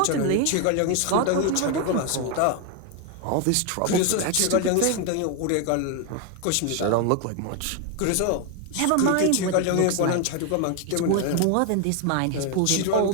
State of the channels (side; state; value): both; different; correlation 0.01